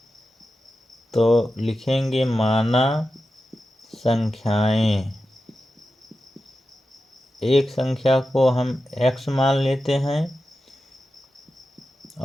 तो लिखेंगे माना संख्याएं। एक संख्या को हम x मान लेते हैं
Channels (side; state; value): both; normal; correlation 0.91